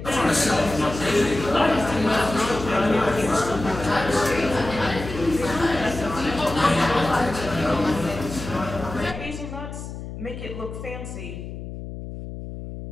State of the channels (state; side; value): noise; left; hum, 9 dB below the sound